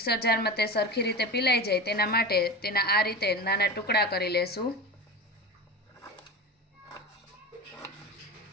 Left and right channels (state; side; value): normal; both; correlation 0.27